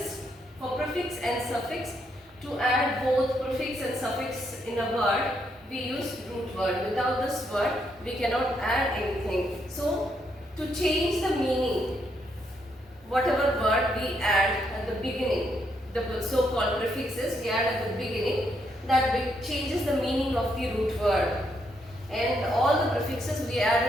for prefix and suffix, to add both prefix and suffix in a word, we use root word. Without this word, we cannot add anything. So to change the meaning, whatever word we add at the beginning, the so-called prefixes we add at the beginning, that changes the meaning of the root word. And all the prefixes we add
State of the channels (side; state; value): both; normal; correlation 0.76